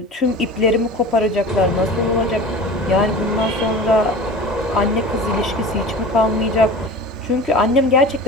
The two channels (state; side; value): normal; both; correlation 0.36